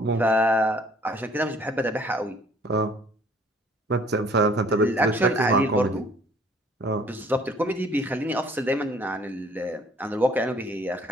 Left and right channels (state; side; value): normal; both; correlation 0.57